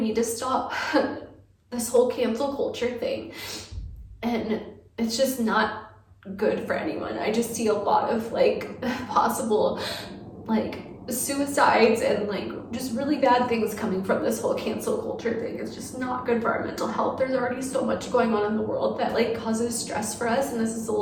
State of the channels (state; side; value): identical; both; correlation 1.00